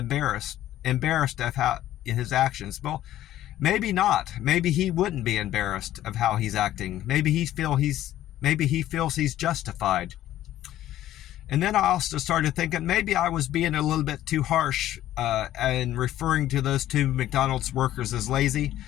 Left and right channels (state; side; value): quieter; right; 13.3 dB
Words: of how his actions. Well, maybe not. Maybe he wouldn't be embarrassed of how he's acting. Maybe he feels he's justified. And then I also started thinking maybe I was being a little bit too harsh and referring to those two McDonald's workers as lazy.